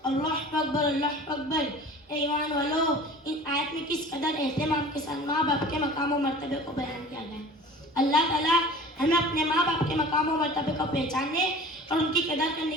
अल्लाह अकबर, अल्लाह अकबर। ईमान वालों, इन आयत में किस कदर एहतमाम के साथ माँ बाप के मकाम और मर्तबे को बयान किया गया है। अल्लाह ताला हमें अपने माँ बाप के मकाम और मर्तबे को पहचानने और उनकी कदर करने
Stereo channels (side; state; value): both; normal; correlation 0.42